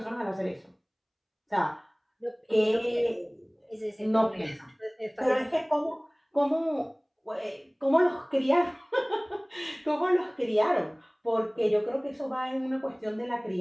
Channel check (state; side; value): identical; both; correlation 1.00